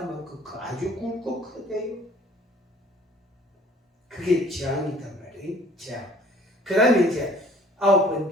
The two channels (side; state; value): both; normal; correlation 0.55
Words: 아주 굵고 크대요. 그게 재앙이단 말이에요. 재앙. 그 다음에 이제